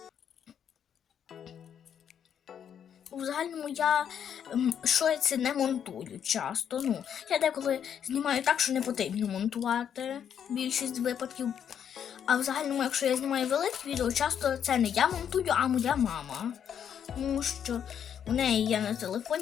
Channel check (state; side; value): quieter; right; 8.6 dB